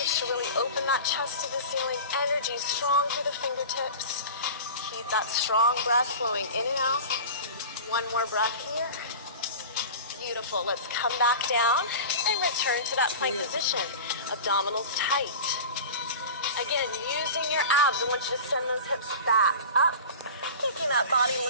to really open that chest to the ceiling. Energy strong through the fingertips. Keep that strong breath flowing in and out. One more breath here. Beautiful. Let's come back down and return to that plank position. Abdominals tight. Again, using your abs, I want you to send those hips back up, making that body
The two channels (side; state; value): both; inverted; correlation -0.34